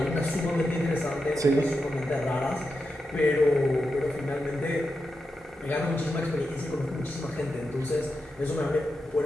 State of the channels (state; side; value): normal; both; correlation 0.88